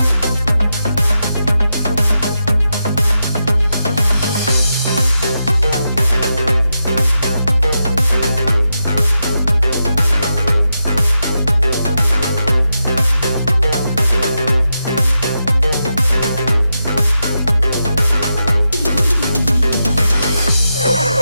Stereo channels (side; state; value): both; inverted; correlation -0.87